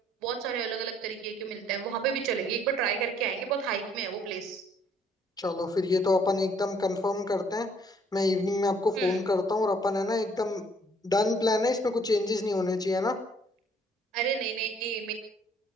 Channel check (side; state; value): both; normal; correlation 0.63